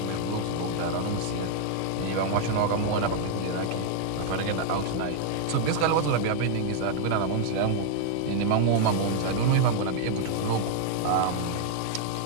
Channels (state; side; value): different; both; correlation 0.00